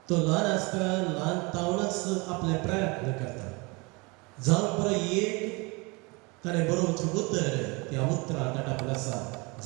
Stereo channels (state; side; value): quieter; left; 27.4 dB